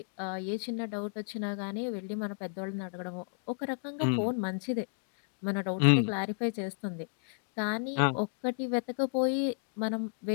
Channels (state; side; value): silent; right; digital silence